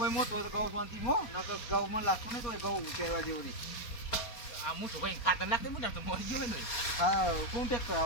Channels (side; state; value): right; late; 4.2 ms